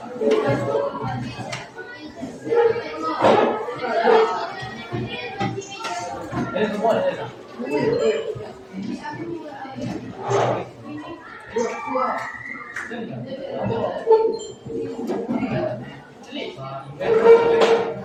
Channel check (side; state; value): both; identical; correlation 1.00